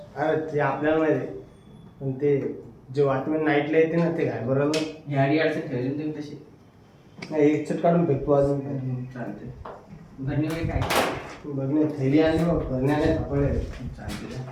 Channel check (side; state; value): both; identical; correlation 1.00